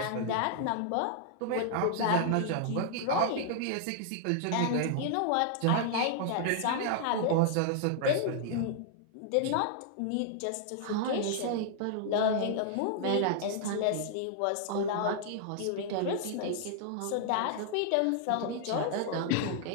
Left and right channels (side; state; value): both; different; correlation -0.01